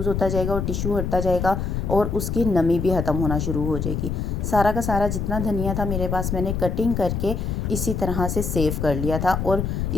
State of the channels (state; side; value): noise; left; rumble, 2 dB below the sound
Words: होता जाएगा और टिशू हटता जाएगा और उसकी नमी भी ख़त्म होना शुरू हो जाएगी। सारा का सारा जितना धनिया था मेरे पास मैंने कटिंग करके इसी तरह से सेव कर लिया था और